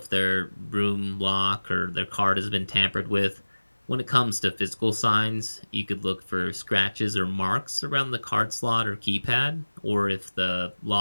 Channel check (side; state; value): both; inverted; correlation -1.00